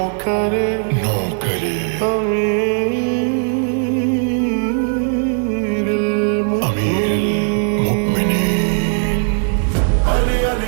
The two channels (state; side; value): silent; left; 68 dB below the other